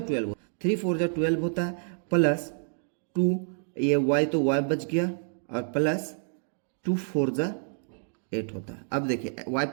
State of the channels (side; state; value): left; silent; digital silence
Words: 12, 3 4 जा 12 होता है, प्लस 2 ये y तो y बच गया, और प्लस 2 4 जा 8 होता है। अब देखिए y